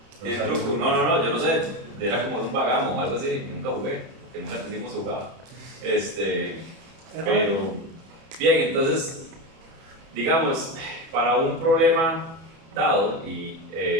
¿Tiene truco? No, yo no sé. Era como un vagamo o algo así. Nunca jugué, que nunca entendimos jugar. Pero, bien, entonces, digamos, para un problema dado, y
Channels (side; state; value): left; late; 31 ms